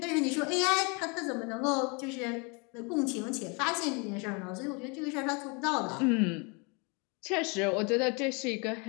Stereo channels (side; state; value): right; quieter; 31.5 dB